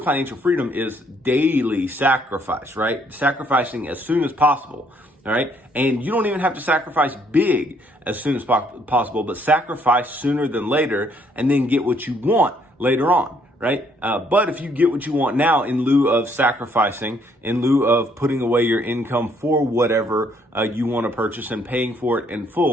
freedom is daily sacrifice, right? Sacrificing as soon as possible, all right? And you don't even have to sacrifice big as soon as possible, but sacrifice sooner than later and then get what you want later on, right? But if you get what you want now in lieu of sacrificing, in lieu of putting away your income for whatever you want to purchase and paying for it in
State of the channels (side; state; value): both; normal; correlation 0.67